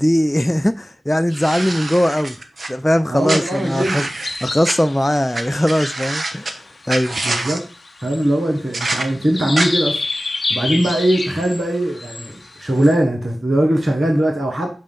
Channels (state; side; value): normal; both; correlation 0.96